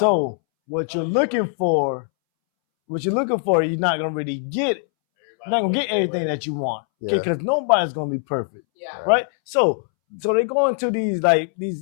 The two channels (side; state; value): right; silent; 64 dB below the other